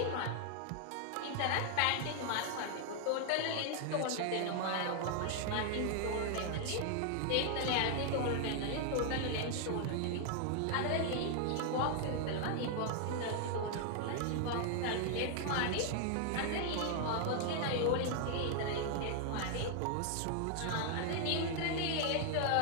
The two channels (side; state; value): both; different; correlation 0.00